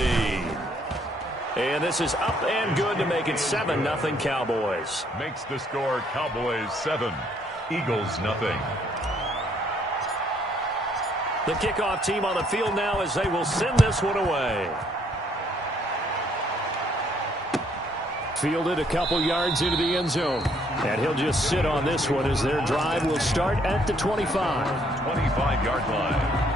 And this is up and good to make it 7-0 Cowboys. Makes the score Cowboys 7, Eagles 0. The kickoff team on the field now as they will send this one away. Fielded a couple yards into the end zone. And he'll just sit on this one as their drive will start at the 25. 25-yard line.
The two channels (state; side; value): normal; both; correlation 0.67